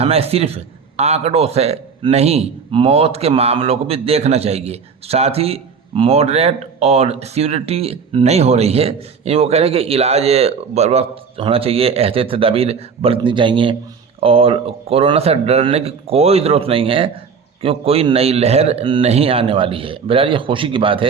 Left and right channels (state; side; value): quieter; left; 5.9 dB